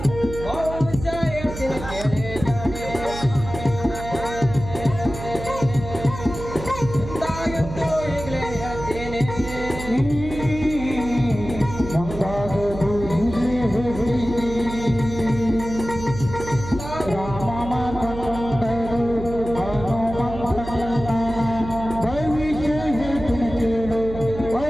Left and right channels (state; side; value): noise; right; hum, 10 dB below the sound